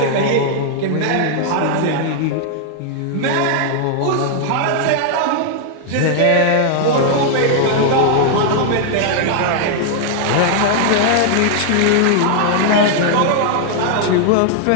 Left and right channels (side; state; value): both; different; correlation 0.00